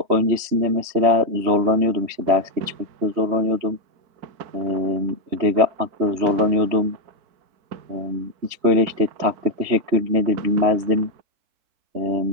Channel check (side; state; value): left; late; 3.2 ms